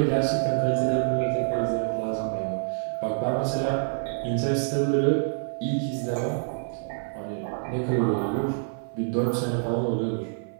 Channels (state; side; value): silent; left; 55 dB below the other